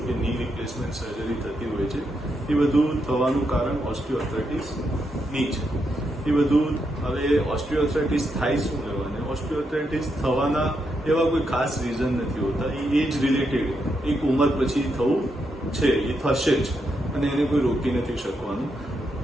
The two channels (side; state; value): both; normal; correlation 0.82